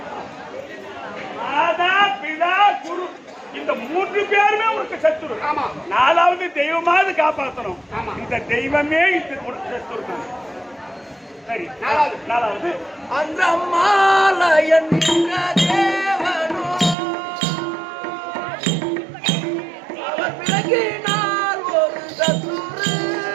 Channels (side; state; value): left; drops out; at 16.9 s